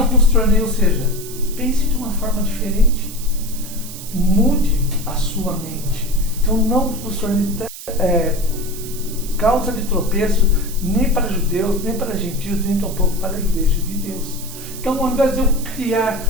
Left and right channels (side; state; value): right; noise; hiss, 12 dB below the sound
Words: vos tornei, ou seja, pense de uma forma diferente. Mude a sua mente. Então, não vos tornei causa de tropeço nem para judeus, nem para gentios, nem tampouco para a igreja de Deus. Então, ao invés de eu